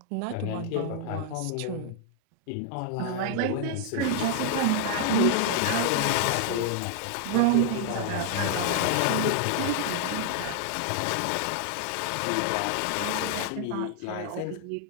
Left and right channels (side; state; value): both; different; correlation -0.01